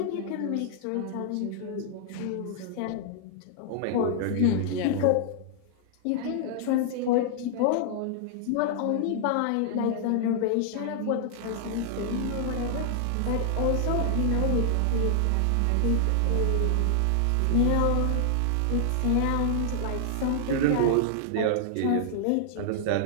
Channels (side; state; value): both; different; correlation -0.01